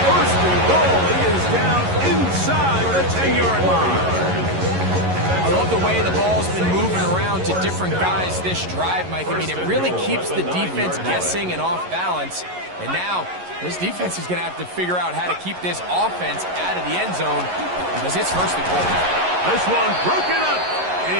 first and goal, he is down inside the 10-yard line. I love the way the ball's been moving around to different guys this drive, Mike. I mean, it really keeps the defense guessing and off balance. And now, this defense is going to have to figure out how to keep this offense out of the end zone because it's first and goal. This one broken up.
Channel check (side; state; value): left; late; 11 ms